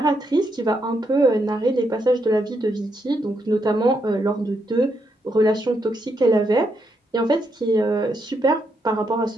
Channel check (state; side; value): normal; both; correlation 0.79